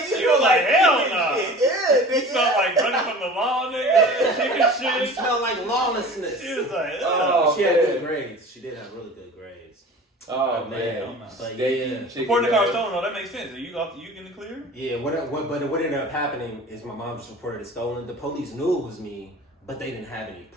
You were like, hell no. Yeah, You smell like running from the law, nigga. Chicken It shit. smelled like lawlessness. She was like, Oh, She had man. good grades. She did have really good grades. Oh, man. man. But Steak, yeah. chicken, Reporting the car man. stolen, though, that makes sense. Are you in the clear? Yeah, but what ended up happening is my mom just reported it stolen. The police knew it was me, but they didn't have any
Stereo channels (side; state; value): both; normal; correlation 0.40